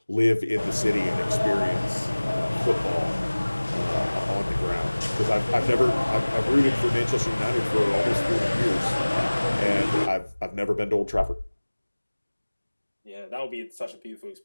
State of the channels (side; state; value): both; inverted; correlation -1.00